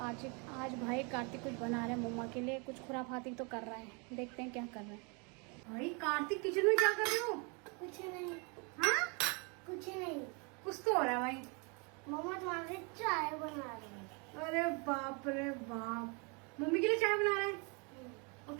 भाई कार्तिक कुछ बना रहे हैं मम्मा के लिए, कुछ खुराफाती तो कर रहा है। देखते हैं क्या कर रहे हैं। भाई कार्तिक किचन में क्या कर रहे हो? कुछ नहीं। हाँ, कुछ नहीं। कुछ तो हो रहा है भाई। मम्मा तुम्हारे लिए चाय बना रही है। अरे बाप रे बाप, मम्मी के लिए चाय बना रहे हैं? और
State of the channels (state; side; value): quieter; left; 32.7 dB